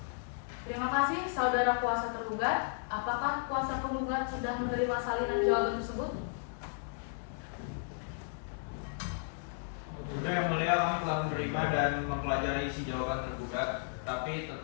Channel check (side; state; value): right; silent; digital silence